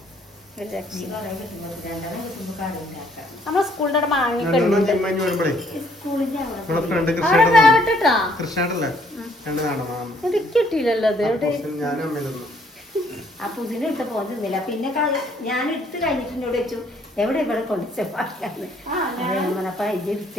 നമ്മളെ സ്കൂളിന്റെ അവിടെ മാങ്ങൊക്കെ കിട്ടിയില്ലല്ലോ. അത് ആ പുതിന ഇട്ട് പോകുന്നില്ല. പിന്നെ ഞാൻ എടുത്ത് കഴിഞ്ഞിട്ട് വെച്ചു എവിടെ ഇവിടെ കൊണ്ടുവച്ചപ്പാക്കാന്ന്.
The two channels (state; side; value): normal; both; correlation 0.64